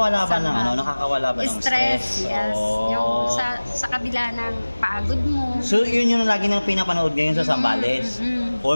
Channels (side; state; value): both; inverted; correlation -1.00